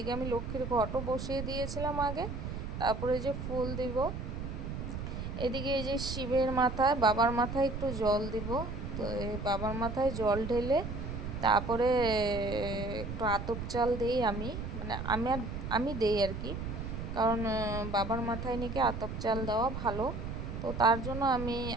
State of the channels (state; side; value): noise; right; rumble, 6 dB below the sound